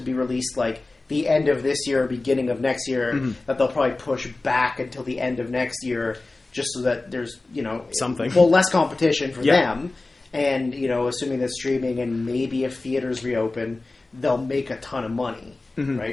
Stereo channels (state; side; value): quieter; right; 3.2 dB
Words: released like the end of this year or beginning of next year that they'll probably push back until the end of next year just so that there's, something. Well, less competition for them. And, assuming that streaming and maybe if theaters reopen, they'll make a ton of money.